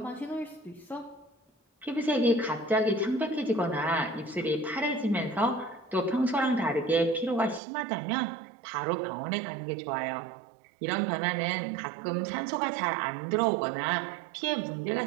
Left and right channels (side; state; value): left; drops out; at 7.6 s